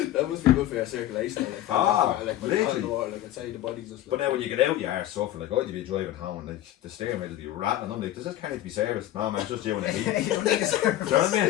That must be good for your circulation. Like when literally. the water, like I'd say the body's just. But now when you get out, you are suffering. Like, you'd be driving home and like the steering wheel will be rattling. I'm like, does this car need to be serviced? No, man, it's just you and the heat. You don't need a service. Do you know what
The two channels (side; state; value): right; quieter; 13.4 dB